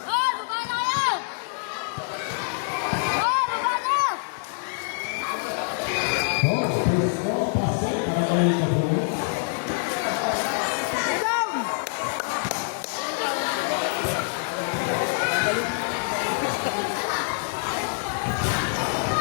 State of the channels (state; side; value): silent; right; digital silence